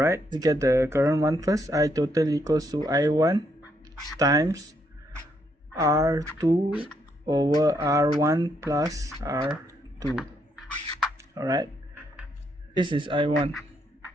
let's get the current 1 first. I total equals to I1 times R2 over R1 plus R2. Alright, this is I1,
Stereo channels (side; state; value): both; normal; correlation 0.75